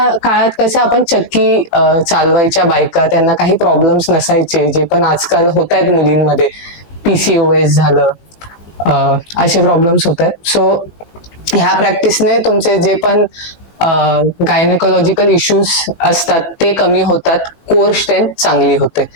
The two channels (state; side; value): late; right; 18 ms